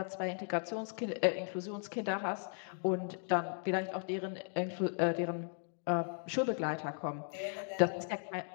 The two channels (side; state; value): right; silent; 53 dB below the other